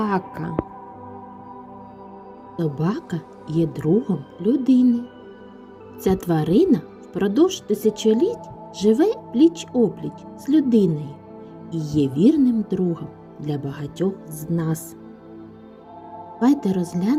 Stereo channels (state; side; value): identical; both; correlation 1.00